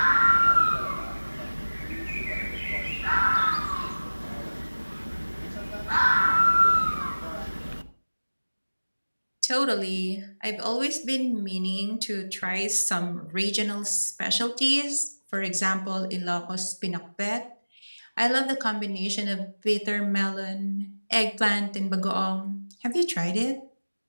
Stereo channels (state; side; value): inverted; both; correlation -1.00